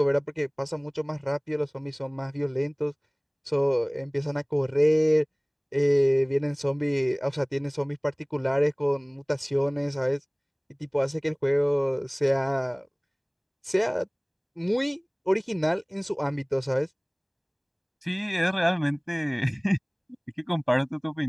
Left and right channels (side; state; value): both; identical; correlation 1.00